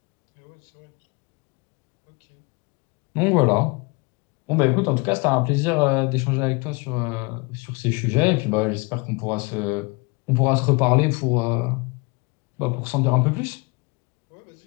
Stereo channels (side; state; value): right; quieter; 28.9 dB